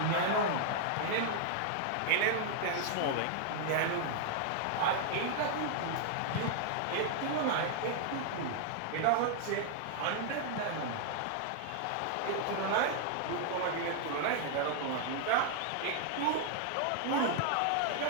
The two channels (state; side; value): different; both; correlation -0.01